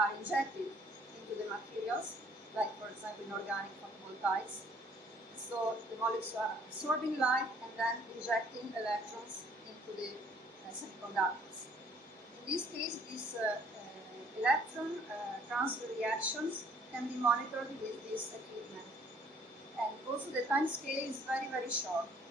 injected into the materials, like, for example, in organic photovoltaics. So the molecules are absorbing light and then injecting electrons into the semiconductors. In this case, these electron transfer reactions can be monitored with this equipment. And also the time scale is very, very short.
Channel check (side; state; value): both; normal; correlation 0.60